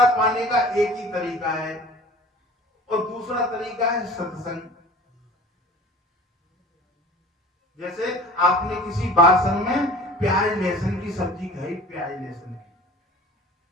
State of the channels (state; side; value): normal; both; correlation 0.43